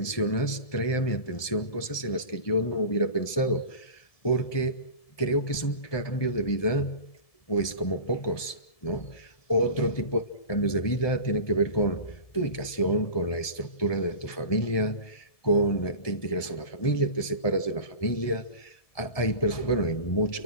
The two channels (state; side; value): late; right; 1.7 ms